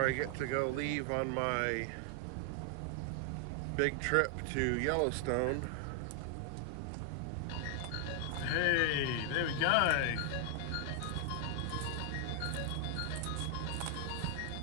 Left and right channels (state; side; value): different; both; correlation 0.00